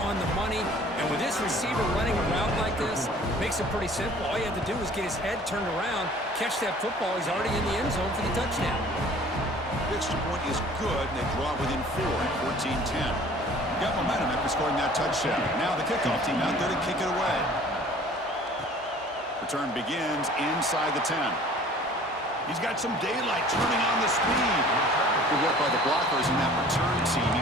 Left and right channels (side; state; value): both; normal; correlation 0.50